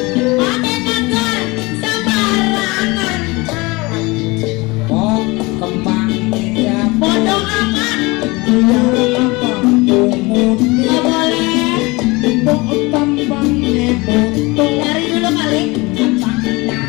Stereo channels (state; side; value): quieter; right; 24.0 dB